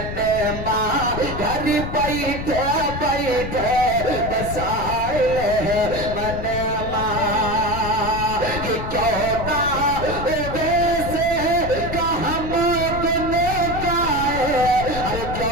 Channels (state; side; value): noise; left; rumble, 7 dB below the sound